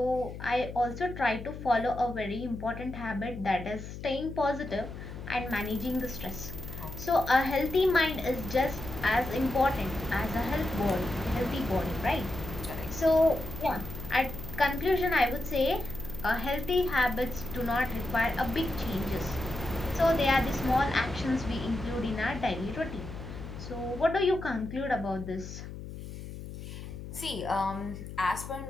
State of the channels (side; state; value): left; noise; hum, 10 dB below the sound